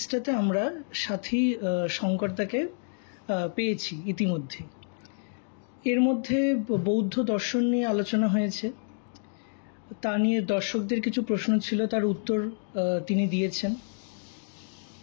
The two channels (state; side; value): silent; right; digital silence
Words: আমরা সাথী শঙ্করদাকে পেয়েছি ইতিমধ্যে। এর মধ্যে বৌদ্ধ দর্শন নিয়ে আলোচনা হয়েছে, তা নিয়ে দর্শকদের কিছু প্রশ্ন ছিল, তার উত্তর তিনি দিয়েছেন।